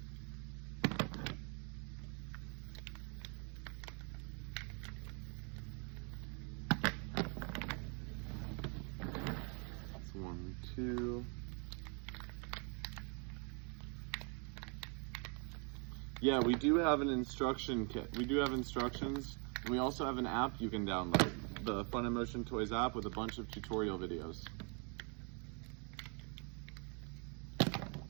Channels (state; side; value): quieter; left; 36.4 dB